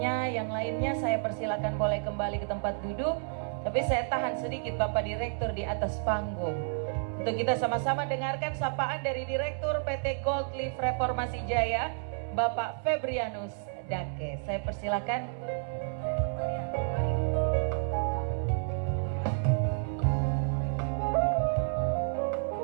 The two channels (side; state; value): left; silent; 57 dB below the other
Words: yang lainnya saya persilakan boleh kembali ke tempat duduk. Tapi saya tahan sedikit Bapak Direktur di atas panggung untuk kita sama-sama dengarkan sapaan dari Direktur PT Gold Leaf Reformasi Jaya, Bapak Febrianus Dake. Saya persilakan.